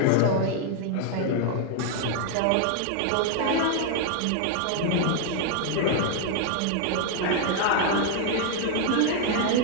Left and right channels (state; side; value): different; both; correlation 0.00